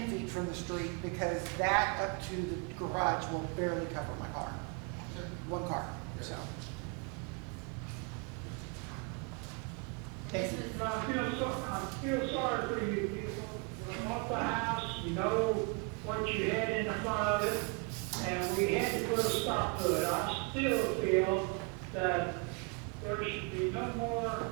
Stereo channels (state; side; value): quieter; left; 30.5 dB